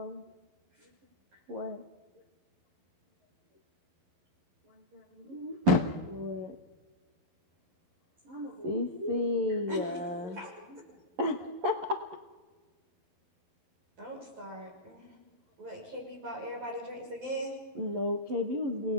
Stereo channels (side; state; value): left; late; 11 ms